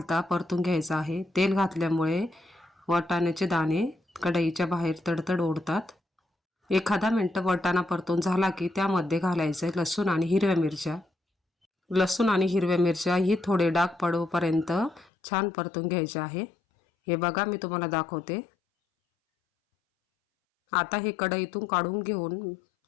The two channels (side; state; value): right; drops out; at 15.1 s